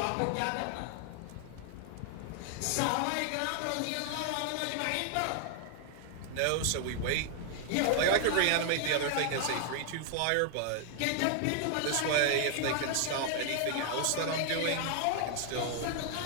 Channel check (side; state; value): both; different; correlation 0.00